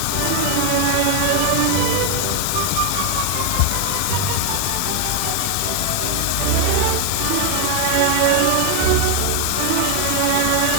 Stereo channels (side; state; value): both; different; correlation 0.01